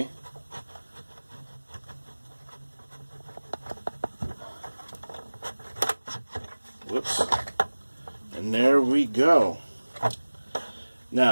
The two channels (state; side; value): inverted; both; correlation -1.00